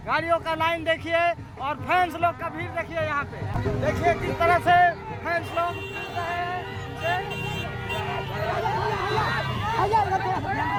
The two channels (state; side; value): identical; both; correlation 1.00